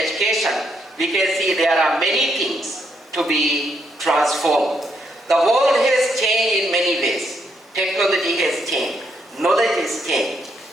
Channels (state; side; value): normal; both; correlation 0.75